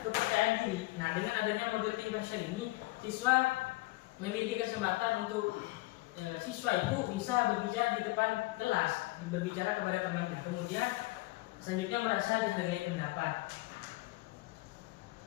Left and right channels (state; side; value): quieter; right; 21.4 dB